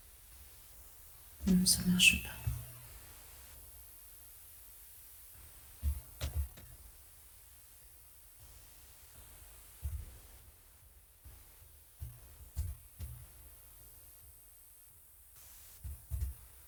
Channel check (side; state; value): both; identical; correlation 1.00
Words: Non, ça ne marche pas.